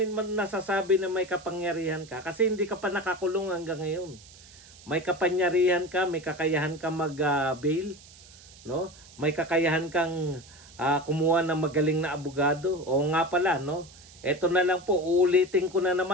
man nasasabi na may kapangyarihan ka kasi hindi ka pa nakakulong hanggang ngayon. May kapangyarihan ka, may kakayahan ka mag-bail, no? May kakayahan kang kumuha ng magaling na abogado. O nga pala, no? Ito na lang po, uulitin ko na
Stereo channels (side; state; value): right; noise; hiss, 22 dB below the sound